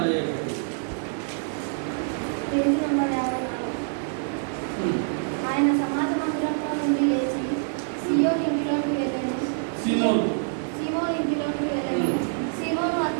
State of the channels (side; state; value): left; silent; digital silence